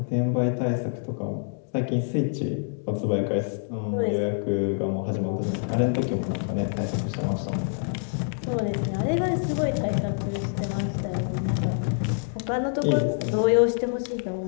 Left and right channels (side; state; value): right; silent; digital silence